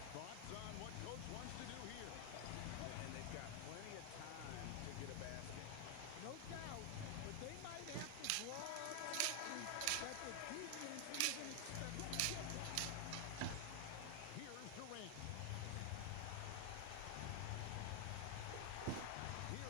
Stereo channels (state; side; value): different; both; correlation 0.00